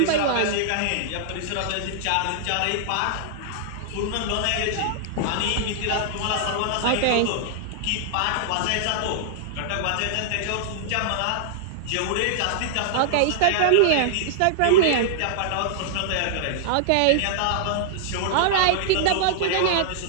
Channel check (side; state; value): both; different; correlation -0.01